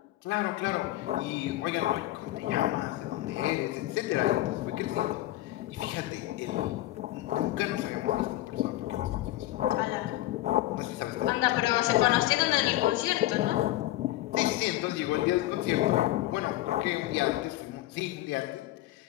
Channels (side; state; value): right; quieter; 16.1 dB